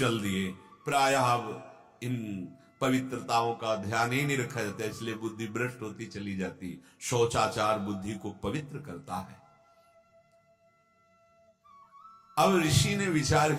दिए। प्रायः अब इन पवित्रताओं का ध्यान ही नहीं रखा जाता, इसलिए बुद्धि भ्रष्ट होती चली जाती। शौचाचार बुद्धि को पवित्र करता है। अब ऋषि ने विचार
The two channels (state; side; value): identical; both; correlation 1.00